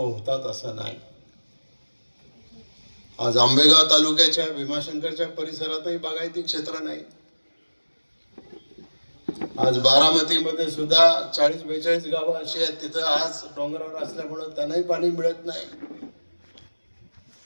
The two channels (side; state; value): both; inverted; correlation -1.00